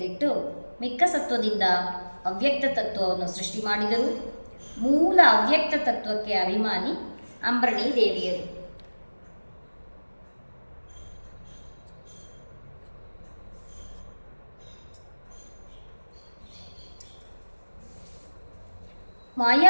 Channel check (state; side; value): inverted; both; correlation -1.00